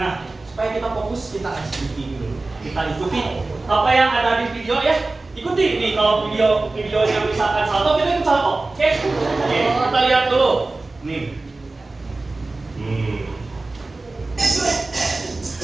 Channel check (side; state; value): left; quieter; 3.3 dB